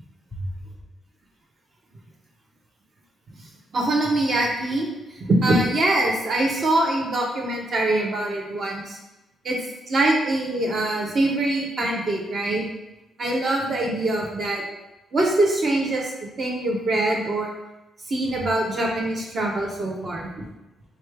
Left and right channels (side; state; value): both; normal; correlation 0.78